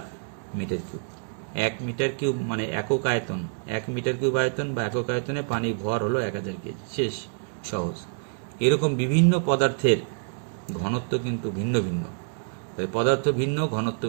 metre cube. 1 metre cube মানে একক আয়তন, 1 মিটার কিউব আয়তন বা একক আয়তনে পানির ভর হলো 1000 কেজি, শেষ, সহজ। এরকম বিভিন্ন পদার্থের ঘনত্ব কিন্তু ভিন্ন ভিন্ন, তাই পদার্থ ভিন্ন, ঘনত্ব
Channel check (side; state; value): left; silent; 60 dB below the other